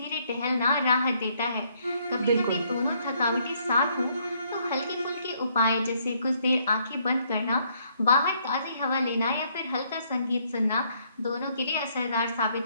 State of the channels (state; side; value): inverted; both; correlation -0.69